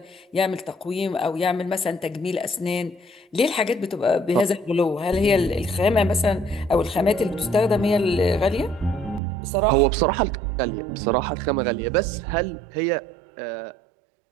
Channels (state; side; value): drops out; left; at 9.2 s